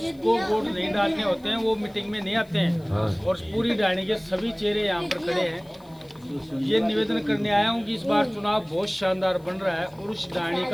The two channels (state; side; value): noise; left; hiss, 29 dB below the sound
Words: वोट नहीं डालने होते हैं वो मीटिंग में नहीं आते हैं। और पूरी डाणी के सभी चेहरे यहाँ पर खड़े हैं। ये निवेदन करने आया हूँ कि इस बार चुनाव बहुत शानदार बन रहा है और उस डाणी